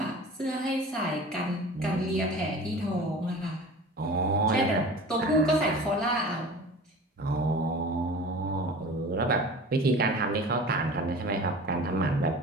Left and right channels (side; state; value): both; normal; correlation 0.39